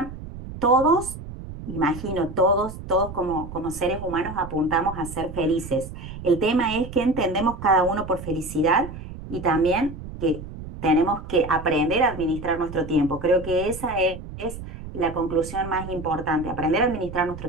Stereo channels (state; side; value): noise; right; rumble, 11 dB below the sound